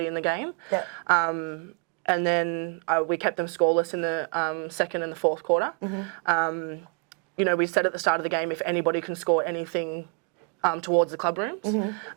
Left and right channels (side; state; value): left; quieter; 34.7 dB